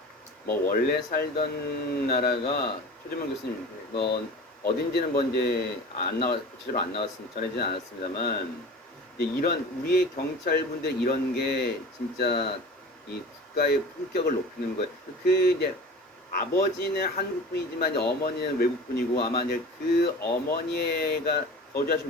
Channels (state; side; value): normal; both; correlation 0.37